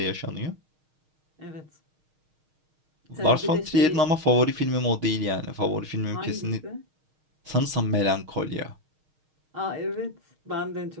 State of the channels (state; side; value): late; left; 6.4 ms